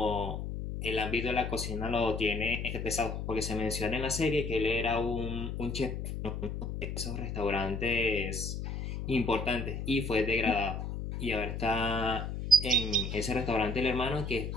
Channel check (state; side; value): noise; left; hum, 4 dB below the sound